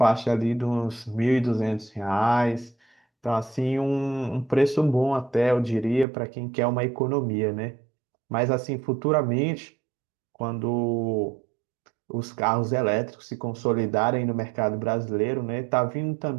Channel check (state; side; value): drops out; left; at 6.1 s